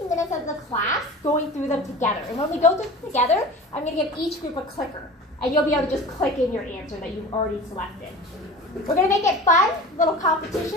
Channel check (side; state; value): both; normal; correlation 0.36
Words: minutes of the class going through them together. And when we go through them together, I'm going to give each group a clicker. And you'll be able to just click in your answer that you've already selected. We're going to make it fun, little competition.